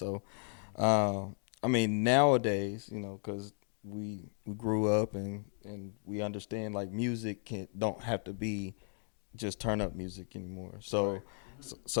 I mean, nowadays, because we grew up and we understand, like, music don't have to be just turn-up music anymore. So, right.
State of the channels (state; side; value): silent; right; 54 dB below the other